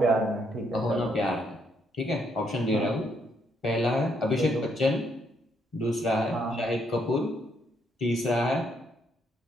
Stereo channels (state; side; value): normal; both; correlation 0.73